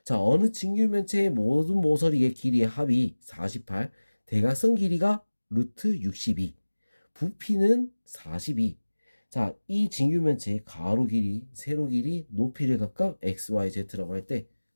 자, 어느 직육면체의 모든 모서리의 길이의 합이 48, 대각선 길이가 루트 62, 부피는 42. 자, 이 직육면체의 가로 길이, 세로 길이, 높이를 각각 x, y, z라고 할 때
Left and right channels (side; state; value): both; inverted; correlation -1.00